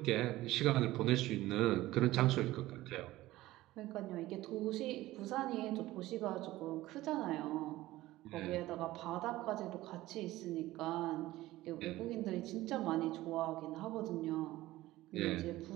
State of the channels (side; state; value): left; quieter; 16.8 dB